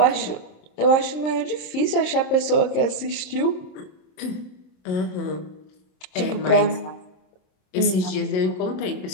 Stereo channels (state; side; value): late; right; 27 ms